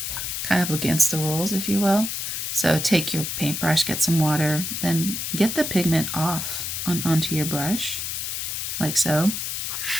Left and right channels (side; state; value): left; noise; hiss, 3 dB below the sound